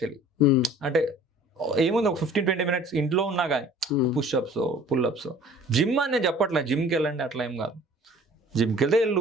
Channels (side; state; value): both; normal; correlation 0.50